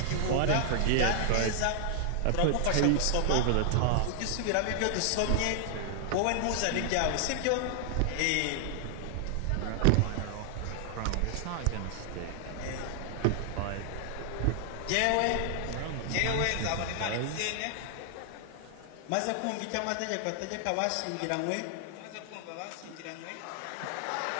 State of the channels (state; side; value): different; both; correlation 0.00